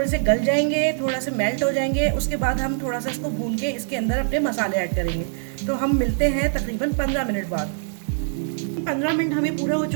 से गल जाएंगे, थोड़ा से मेल्ट हो जाएंगे, उसके बाद हम थोड़ा सा इसको भून के इसके अंदर अपने मसाले ऐड करेंगे। तो हम मिलते हैं तकरीबन 15 मिनट बाद। 15 मिनट हमें पूरे हो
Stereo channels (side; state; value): left; silent; digital silence